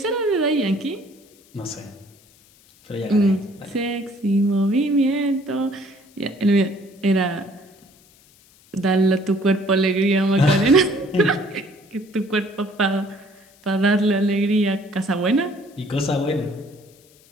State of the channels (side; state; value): left; noise; hiss, 29 dB below the sound